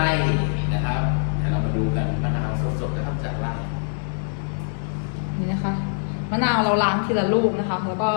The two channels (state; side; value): silent; right; digital silence